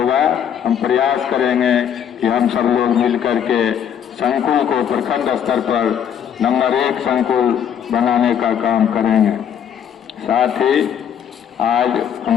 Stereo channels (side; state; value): right; quieter; 8.7 dB